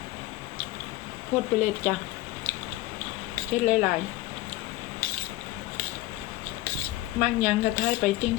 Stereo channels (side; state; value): right; quieter; 17.3 dB